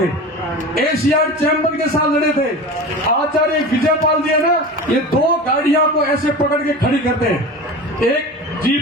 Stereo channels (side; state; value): both; normal; correlation 0.31